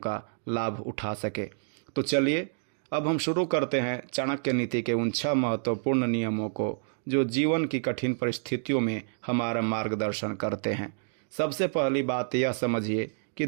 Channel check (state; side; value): silent; left; digital silence